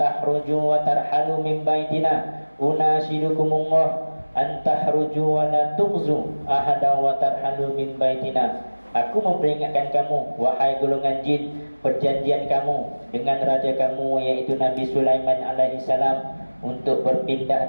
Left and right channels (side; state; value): both; inverted; correlation -1.00